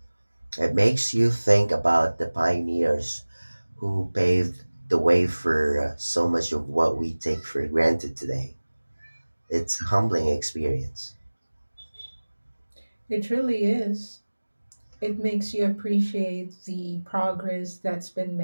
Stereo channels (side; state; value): both; inverted; correlation -1.00